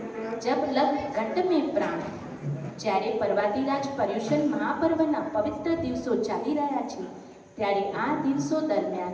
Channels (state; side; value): identical; both; correlation 1.00